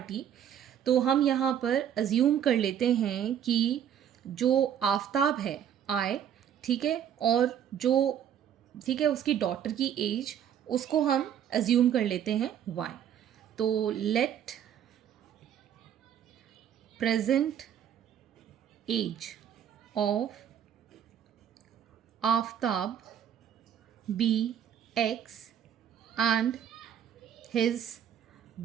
तो हम यहाँ पर assume कर लेते हैं कि जो आफ्ताब है आए, ठीक है, और जो ठीक है उसकी डॉटर की एज उसको हम अज्यूम कर लेते हैं y. तो let present age of Aftab be x and his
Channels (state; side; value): quieter; left; 9.4 dB